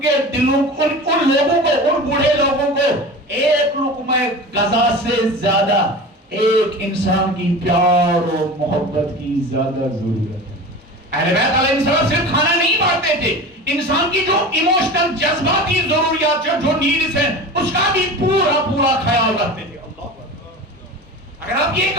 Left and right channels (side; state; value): both; normal; correlation 0.32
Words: دلوں, ان لوگوں کو, ان بوڑھے لوگوں کو ایک لقمہ غذا سے زیادہ ایک انسان کی پیار اور محبت کی زیادہ ضرورت ہے. اہل بیت علیہ السلام صرف کھانا نہیں بانٹتے تھے, انسان کی جو ایموشنل جذباتی ضروریات جو نیڈز ہیں اس کا بھی پورا پورا خیال رکھتے تھے. اگر آپ یہ